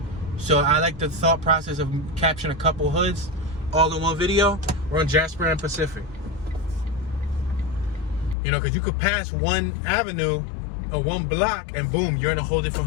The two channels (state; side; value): drops out; right; at 8.3 s